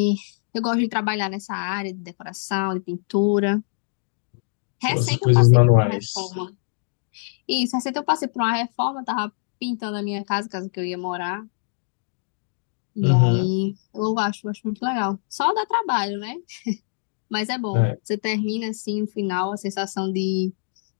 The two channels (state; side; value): silent; right; digital silence